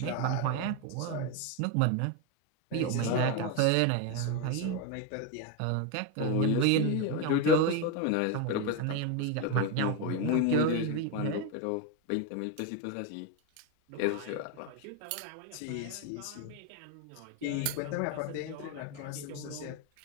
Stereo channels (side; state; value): both; different; correlation 0.02